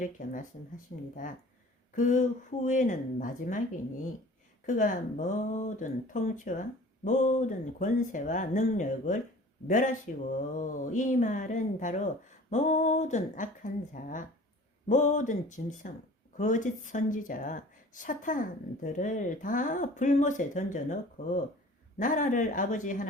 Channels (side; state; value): both; normal; correlation 0.45